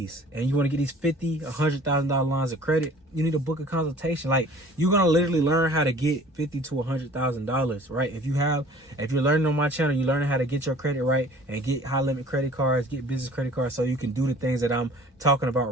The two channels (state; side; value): normal; both; correlation 0.49